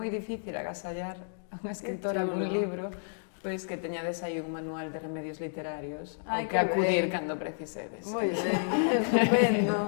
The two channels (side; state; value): right; silent; digital silence